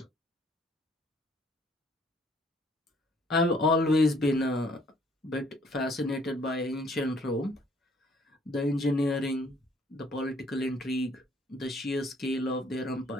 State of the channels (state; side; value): normal; both; correlation 0.62